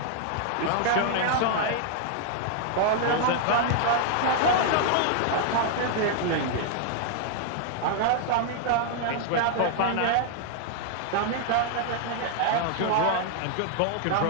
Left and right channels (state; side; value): different; both; correlation 0.00